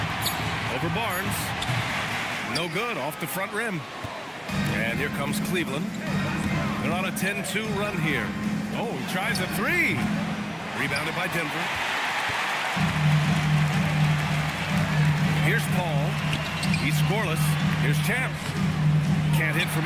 Over Barnes. No good, off the front rim. And here comes Cleveland. They're on a 10-2 run here. Oh, he tries a 3. Rebounded by Denver. Here's Paul. He's scoreless. Here's Champ. Can't hit from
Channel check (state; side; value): identical; both; correlation 1.00